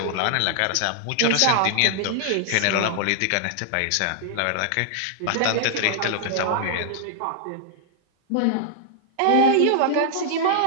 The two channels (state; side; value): different; both; correlation -0.01